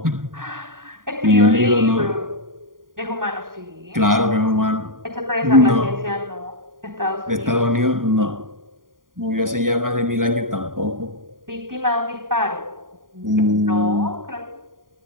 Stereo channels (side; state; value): left; late; 0.90 ms